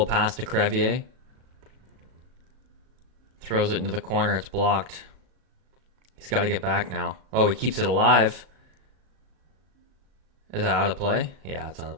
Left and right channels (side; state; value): left; late; 36 ms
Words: pass to Crevier. Throws it into the corner. It's blocked. He's got to get back now. Oh, he keeps it alive. Is that out of play? Yeah, it's out of